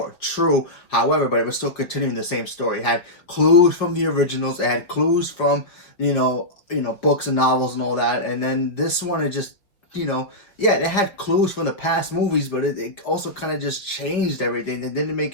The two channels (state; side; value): late; right; 5.0 ms